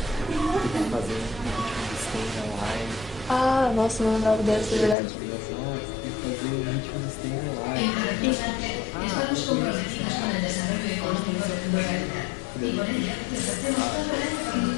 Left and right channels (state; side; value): drops out; right; at 5.0 s